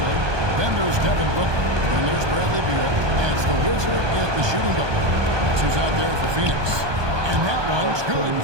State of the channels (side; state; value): left; late; 1.2 ms